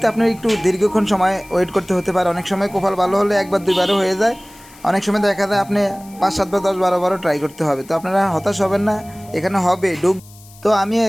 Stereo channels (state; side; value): noise; left; hiss, 24 dB below the sound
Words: আপনার একটু দীর্ঘক্ষণ সময় ওয়েট করতে হতে পারে। অনেক সময় কপাল ভালো হলে একবার দুইবারও হয়ে যায়, অনেক সময় দেখা যায় আপনি 5-7 বার 10-12 বারও ট্রাই করতে হবে। তো আপনারা হতাশ হবেন না, এখানে হবে ঢুক। তো আমি